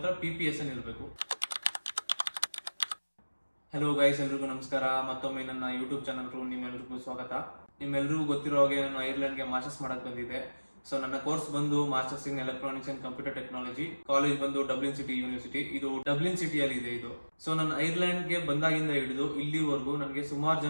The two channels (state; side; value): inverted; both; correlation -1.00